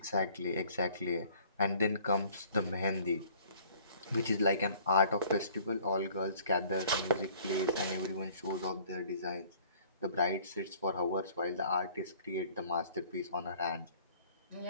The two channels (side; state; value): both; inverted; correlation -0.55